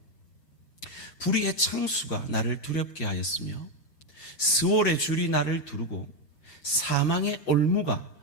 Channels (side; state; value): right; late; 5.8 ms